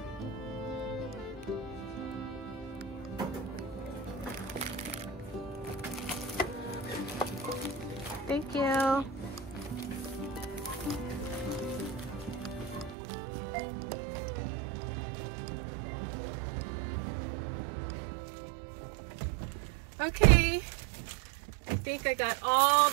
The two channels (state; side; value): drops out; left; at 13.0 s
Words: Thank you. Okay, I think I got all